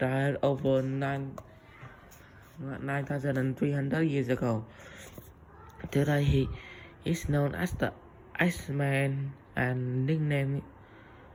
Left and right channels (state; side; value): identical; both; correlation 1.00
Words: over 9,300 years ago. Today he is known as the Iceman and nicknamed